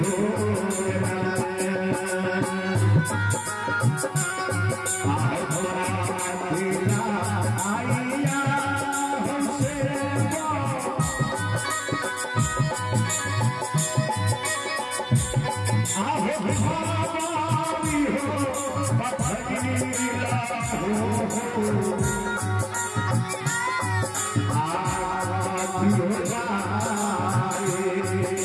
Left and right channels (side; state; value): both; identical; correlation 1.00